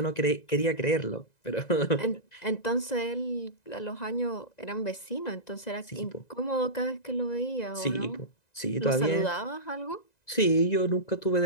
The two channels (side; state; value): right; late; 1.9 ms